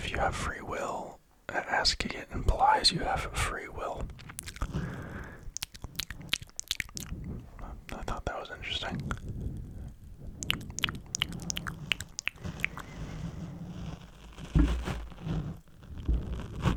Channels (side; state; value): both; identical; correlation 1.00